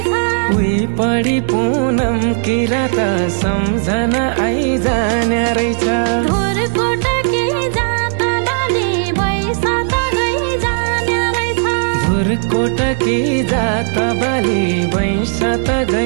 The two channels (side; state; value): left; silent; digital silence